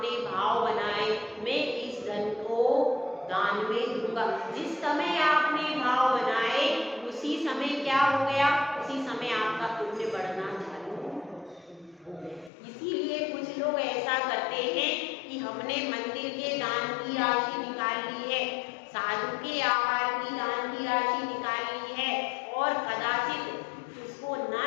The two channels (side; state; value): right; drops out; at 12.5 s